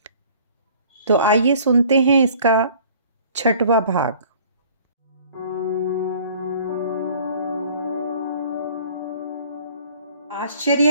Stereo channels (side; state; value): both; inverted; correlation -0.52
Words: तो आइए सुनते हैं इसका 6वां भाग।